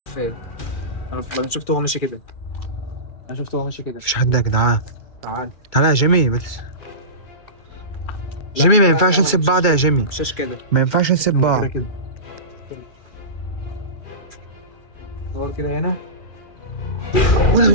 فين؟ انا شفته هو ماشي كده. انا شفته هو ماشي كده. مفيش حد يا جدعان. تعال. تعالى يا جيمي بس. جيمي ما ينفعش نسيب بعض يا جيمي. مشاش كده. ما ينفعش نسيب هو بعض. كده. دور كده هنا.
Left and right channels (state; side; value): late; right; 2.3 ms